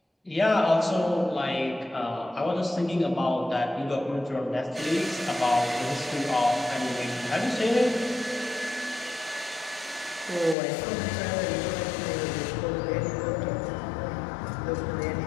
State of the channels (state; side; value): drops out; right; at 10.6 s